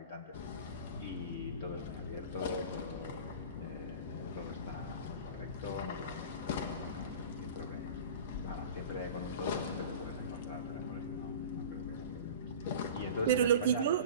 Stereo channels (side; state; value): both; inverted; correlation -0.36